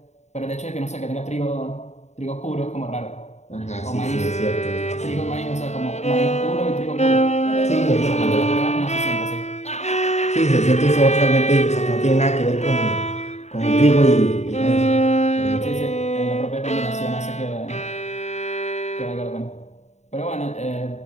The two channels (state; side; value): late; right; 0.33 ms